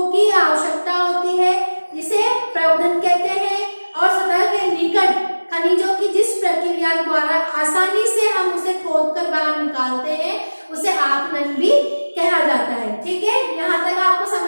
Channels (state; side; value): inverted; both; correlation -1.00